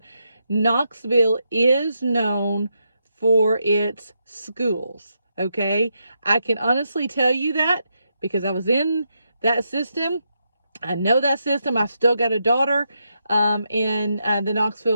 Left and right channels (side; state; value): both; inverted; correlation -0.82